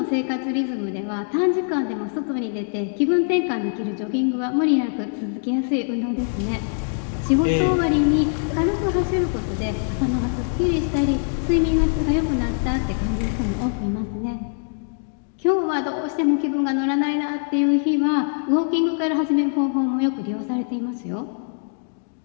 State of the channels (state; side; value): silent; right; 58 dB below the other